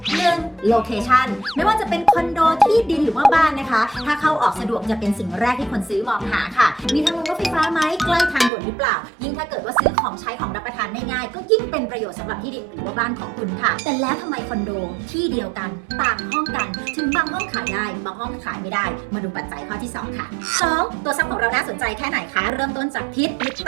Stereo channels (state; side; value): drops out; left; at 8.5 s